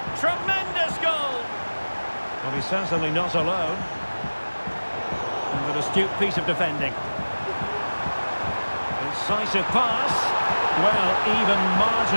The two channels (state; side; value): inverted; both; correlation -1.00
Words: Tremendous goal. Well, he's certainly not alone. And an astute piece of defending. Incisive pass. Well, even